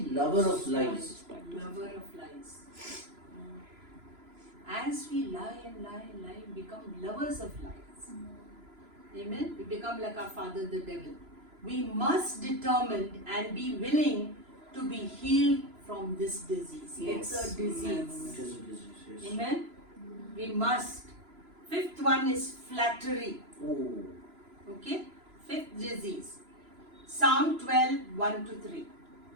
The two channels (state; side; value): late; left; 3.0 ms